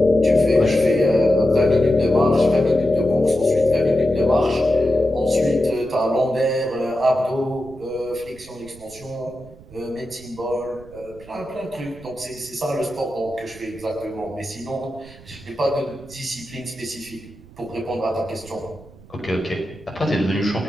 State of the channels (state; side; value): noise; right; rumble, 21 dB below the sound